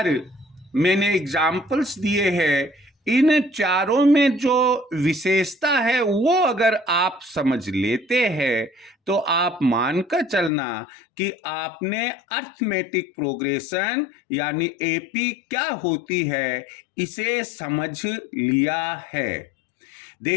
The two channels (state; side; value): drops out; right; at 10.5 s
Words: मैंने एग्जाम्पल्स दिए हैं, इन चारों में जो विशेषता है वो अगर आप समझ लेते हैं तो आप मानकर चलना कि आपने अर्थमेटिक प्रोग्रेशन यानी एपी क्या होती है इसे समझ लिया है।